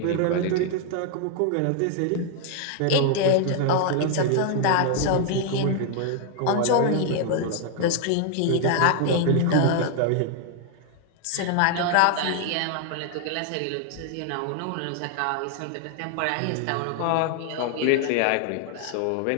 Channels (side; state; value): both; different; correlation 0.00